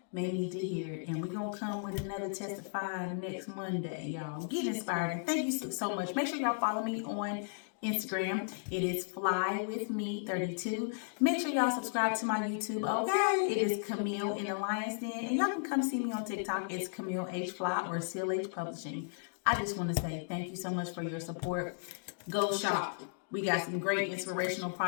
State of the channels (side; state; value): right; silent; digital silence